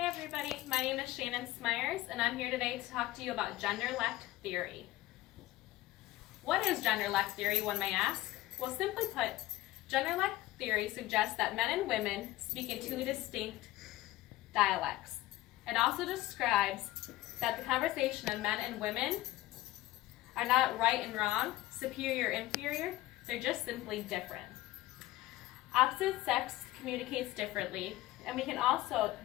everybody, my name is Shannon Smyers and I'm here today to talk to you about Genderlect theory. What is Genderlect theory, one may ask? Well, simply put, Genderlect theory suggests that men and women speak in two distinct dialects. It also describes that the conversation of men and women are not right and wrong, superior, inferior, they're just simply different. Opposite sex communicates differently, and we can also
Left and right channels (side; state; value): right; quieter; 16.7 dB